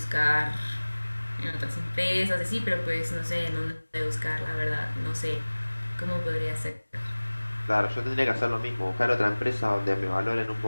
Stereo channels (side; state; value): both; inverted; correlation -1.00